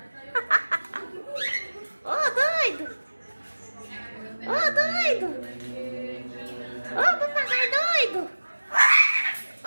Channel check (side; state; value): both; inverted; correlation -1.00